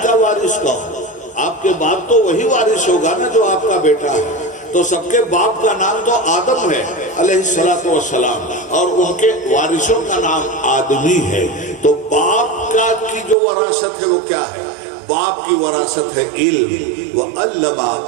کا وارث کون؟ آپ کے بعد تو وہی وارث ہوگا نا جو آپ کا بیٹا ہے۔ تو سب کے باپ کا نام تو آدم ہے علیہ السلام اور ان کے وارثوں کا نام آدمی ہے۔ تو باپ کا کی جو وراثت ہے وہ کیا ہے؟ باپ کی وراثت ہے علم۔ وَعَلَّمَ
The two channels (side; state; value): left; drops out; at 13.4 s